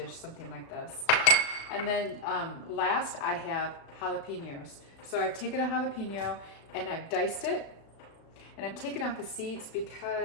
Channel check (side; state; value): right; late; 36 ms